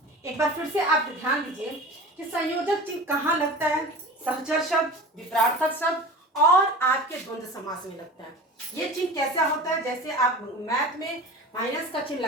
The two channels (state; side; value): normal; both; correlation 0.36